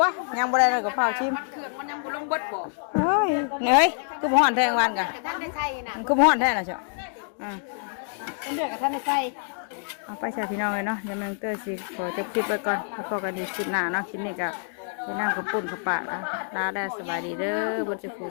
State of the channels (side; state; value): right; silent; 60 dB below the other